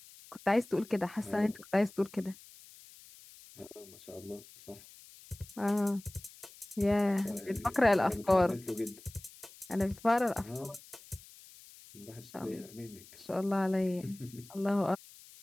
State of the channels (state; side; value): noise; left; hiss, 21 dB below the sound